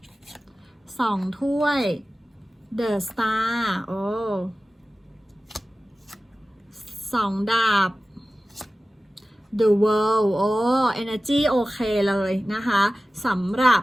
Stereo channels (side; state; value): both; normal; correlation 0.95